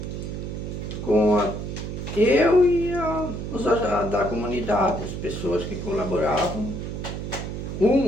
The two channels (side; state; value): right; noise; hum, 6 dB below the sound